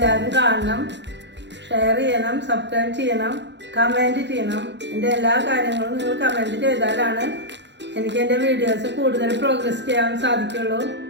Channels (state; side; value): late; left; 0.52 ms